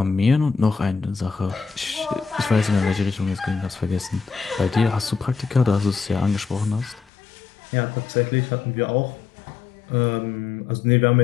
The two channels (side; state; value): right; drops out; at 7.1 s